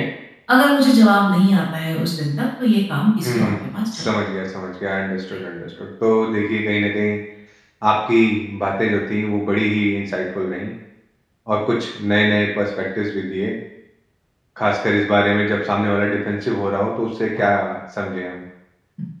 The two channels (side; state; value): both; identical; correlation 1.00